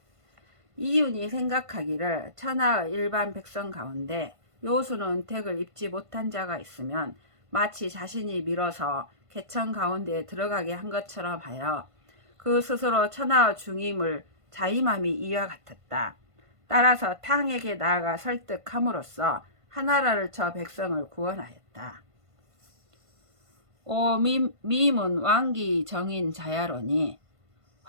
이윤이 생각하기를 천하의 일반 백성 가운데 요수는 택을 입지 못한 자가 있으면 마치 자신이 밀어서 개천 가운데에 들어가게 한 것처럼 하여 그 스스로 천하의 중임을 자임함이 이와 같았다. 따라서 탕에게 나아가 설득함으로써 하나라를 쳐 백성을 구원하였다. 오 미문 왕기 정인 자야로니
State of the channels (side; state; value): left; late; 1.5 ms